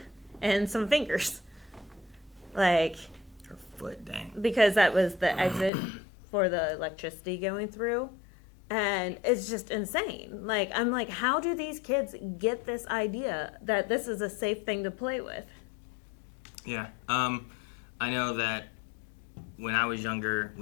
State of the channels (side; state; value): right; drops out; at 5.7 s